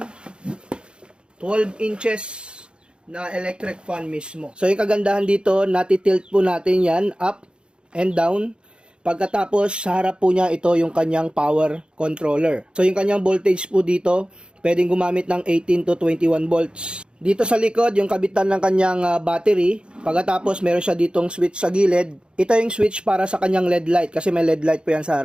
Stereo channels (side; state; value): left; late; 0.053 ms